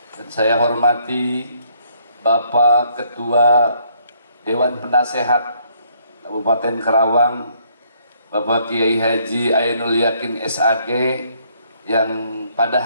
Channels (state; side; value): inverted; both; correlation -0.68